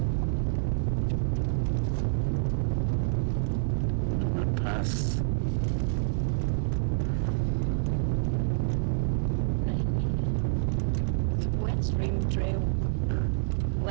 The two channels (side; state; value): left; silent; 59 dB below the other